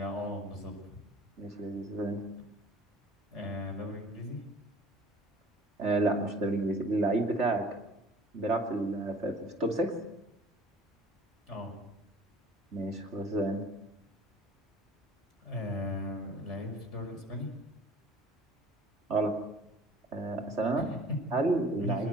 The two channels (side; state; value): both; normal; correlation 0.49